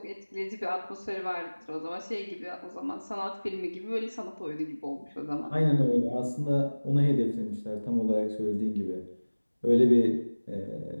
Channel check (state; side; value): inverted; both; correlation -1.00